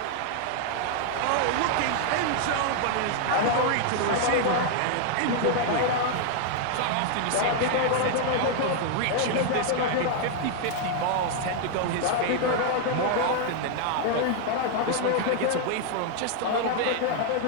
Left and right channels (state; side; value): different; both; correlation 0.00